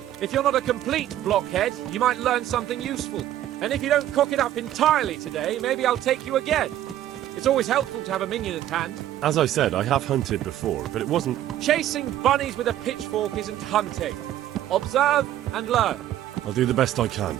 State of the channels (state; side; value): quieter; left; 12.6 dB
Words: If you're not a complete blockhead, you might learn something useful. And if you don't cock it up entirely today, maybe I'll take you again. It's always helpful to have a minion at hand. As I said, I have hunted before, but it wasn't... Chasing bunnies with a pitchfork isn't hunting. Observe and learn. I'll do the best I can,